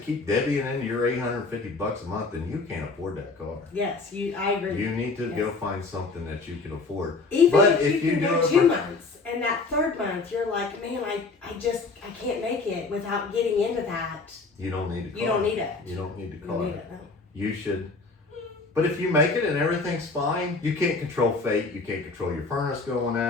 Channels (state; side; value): quieter; right; 3.8 dB